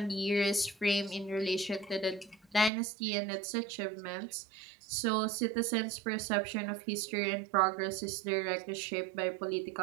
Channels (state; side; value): drops out; left; at 2.7 s